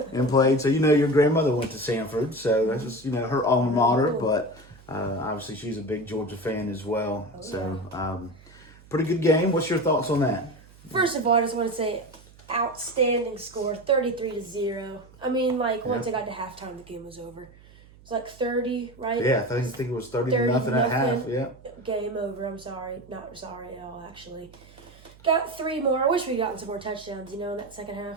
and played. So, your grandmother went to Sanford. So, that's just, her alma mater. But obviously, she's a big Georgia fan as well. Pretty good game. What's your thoughts on that? First of all, I just want to say outstanding score, 33-0. I mean, once it got to halftime, the game was over. It was 30, right? Yeah, I think it was 30 to nothing at half. Yeah. Game over. I'm sorry. Not sorry at all, actually. Got 3 more. I wish we'd gotten some more touchdowns, in that second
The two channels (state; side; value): noise; right; hum, 24 dB below the sound